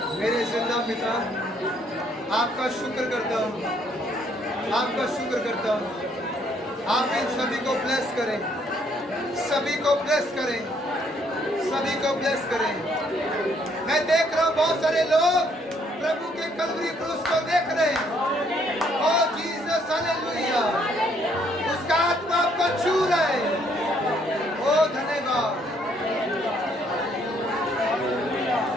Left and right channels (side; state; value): both; normal; correlation 0.67